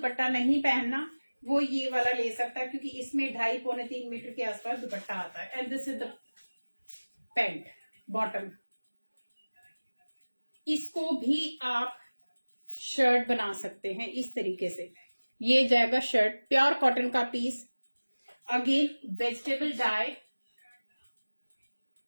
नहीं पहनना, वो ये वाला ले सकता है, क्योंकि इसमें 2.5-3 मीटर के आसपास दुपट्टा आता है। And this is the pant bottom. इसको भी आप शर्ट बना सकते हैं इस तरीके से। ये जाएगा शर्ट, प्योर कॉटन का piece. Again vegetable dye.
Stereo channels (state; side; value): inverted; both; correlation -1.00